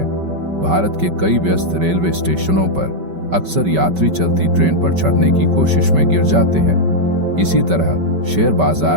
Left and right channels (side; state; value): left; late; 5.2 ms